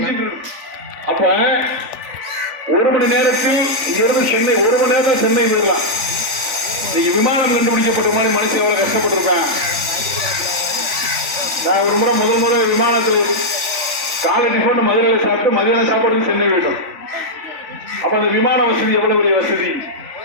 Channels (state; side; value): late; left; 3.5 ms